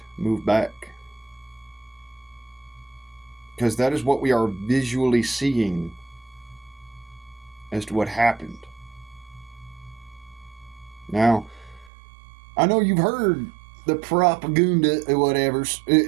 move back. Because that is what we are visually seeing as to what happened. Now, I know you've heard the propaganda or whatever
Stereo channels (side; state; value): left; drops out; at 11.9 s